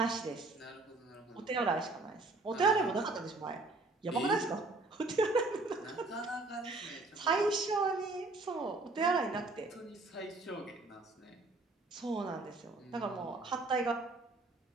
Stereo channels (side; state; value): left; quieter; 3.2 dB